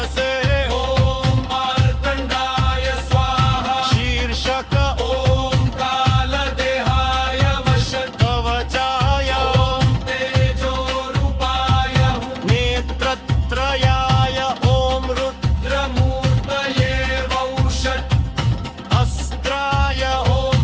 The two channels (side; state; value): both; identical; correlation 1.00